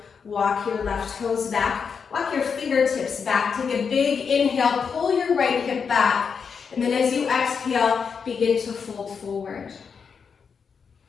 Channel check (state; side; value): quieter; right; 6.1 dB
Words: walk your left toes back. Walk your fingertips back. Take a big inhale, pull your right hip back. And then as you exhale, begin to fold forward.